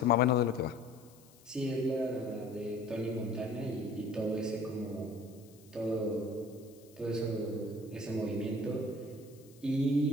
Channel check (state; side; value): noise; left; hiss, 26 dB below the sound